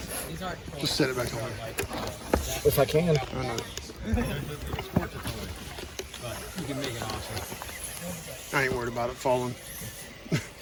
Just set it back on there. If I can. I know. I ain't worried about it falling.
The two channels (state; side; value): identical; both; correlation 1.00